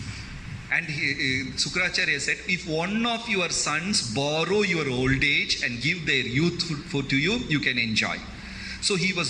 And Shukracharya said, if one of your sons borrow your old age and give their youth to you, you can enjoy. So he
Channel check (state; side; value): identical; both; correlation 1.00